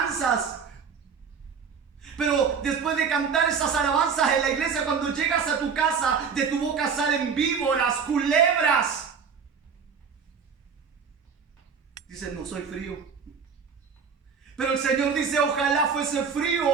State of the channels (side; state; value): left; quieter; 6.2 dB